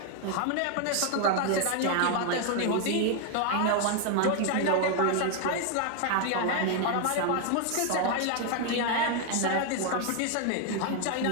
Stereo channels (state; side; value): different; both; correlation 0.00